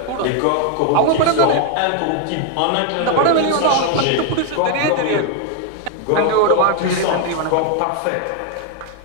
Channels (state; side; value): different; both; correlation 0.00